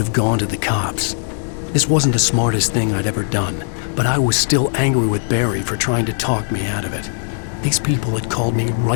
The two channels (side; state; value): right; silent; digital silence